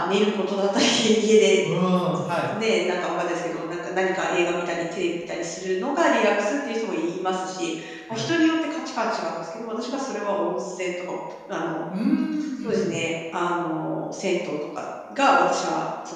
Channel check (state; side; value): identical; both; correlation 1.00